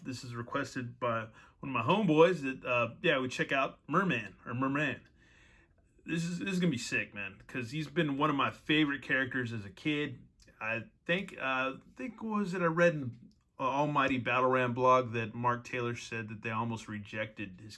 this is requested by one of my homeboys that, we check out Merman, or Merman. This is going to be sick, man, because he's been one of my favorite characters as a kid. I think I read in Almighty Battle Ram blog that Mark Taylor said that they almost rejected his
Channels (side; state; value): both; identical; correlation 1.00